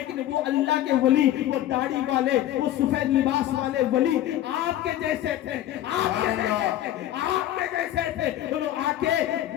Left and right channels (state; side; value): quieter; right; 12.9 dB